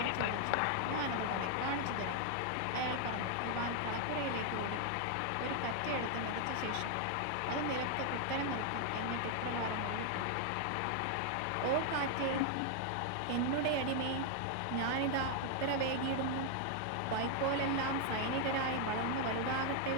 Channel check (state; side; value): different; both; correlation 0.00